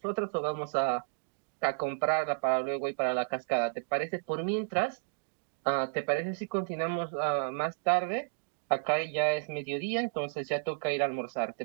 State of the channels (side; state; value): left; silent; digital silence